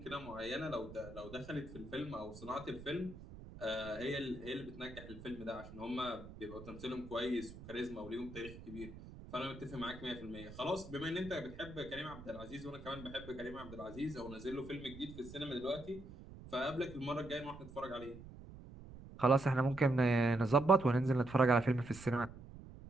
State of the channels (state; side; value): noise; right; rumble, 15 dB below the sound